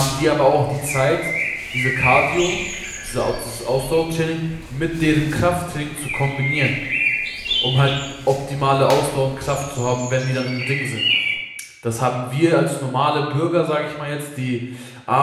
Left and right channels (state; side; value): identical; both; correlation 1.00